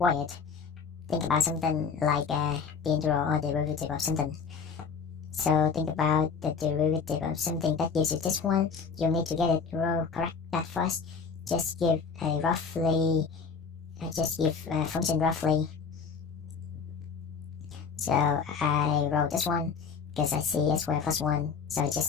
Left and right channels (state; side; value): quieter; right; 5.7 dB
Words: Think about something like the integral or derivative of something. So think about the derivative of something that gives you this one. You need to get it correct that first. Just give a roughly. Just give a function roughly. So I wrote this one because I see s squared plus 1. So I